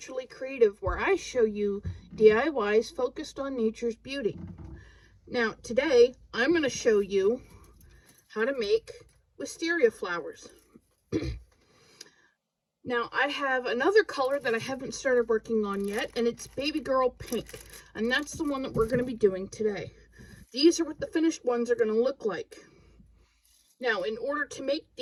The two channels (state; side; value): identical; both; correlation 1.00